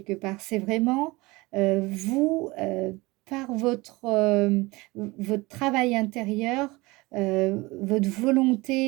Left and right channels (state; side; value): quieter; left; 22.5 dB